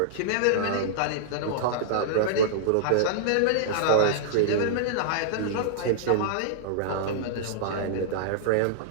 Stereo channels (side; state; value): both; different; correlation -0.01